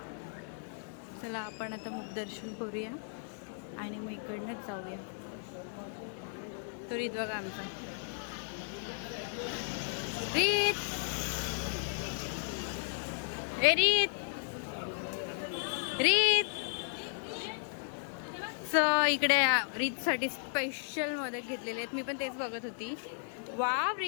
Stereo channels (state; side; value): silent; right; digital silence